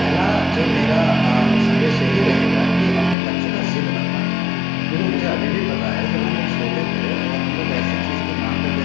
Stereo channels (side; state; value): right; drops out; at 3.2 s